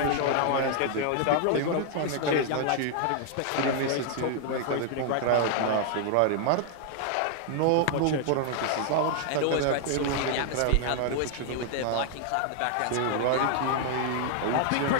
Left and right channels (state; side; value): different; both; correlation 0.00